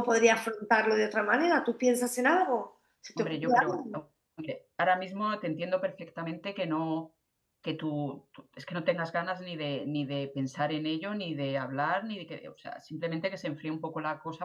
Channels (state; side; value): identical; both; correlation 1.00